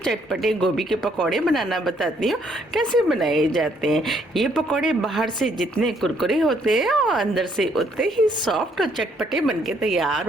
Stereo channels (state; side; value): normal; both; correlation 0.68